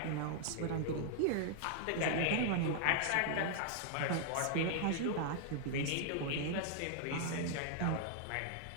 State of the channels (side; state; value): both; different; correlation -0.01